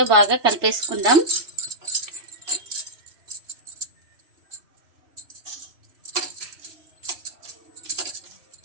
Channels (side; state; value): left; late; 3.0 ms